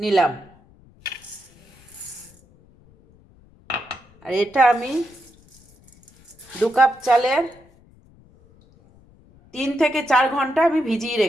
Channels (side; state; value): left; noise; rumble, 28 dB below the sound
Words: আর এটা আমি 2 কাপ চালের 3 থেকে 4 ঘন্টা আমি ভিজিয়ে